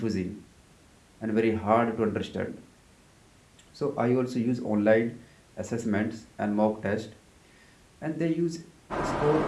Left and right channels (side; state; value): both; identical; correlation 1.00